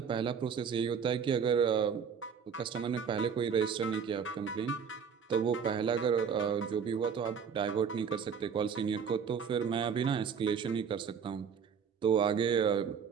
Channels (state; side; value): quieter; left; 6.8 dB